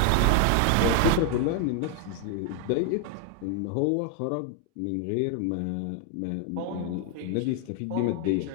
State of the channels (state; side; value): different; both; correlation 0.00